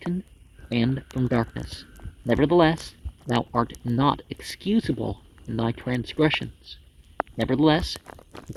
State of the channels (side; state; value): both; identical; correlation 1.00